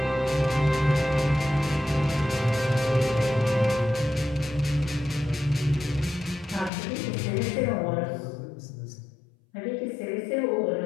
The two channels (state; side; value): drops out; right; at 6.7 s